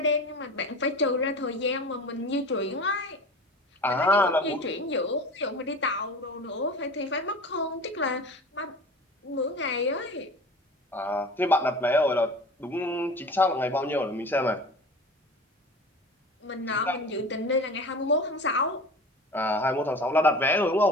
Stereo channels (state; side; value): normal; both; correlation 0.36